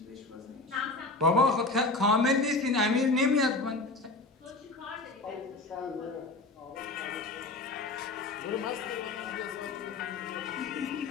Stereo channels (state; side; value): quieter; right; 3.3 dB